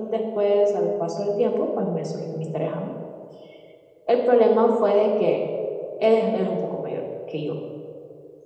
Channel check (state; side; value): identical; both; correlation 1.00